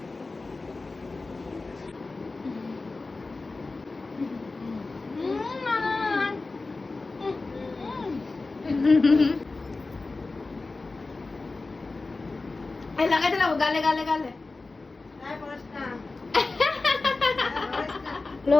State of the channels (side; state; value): right; quieter; 3.6 dB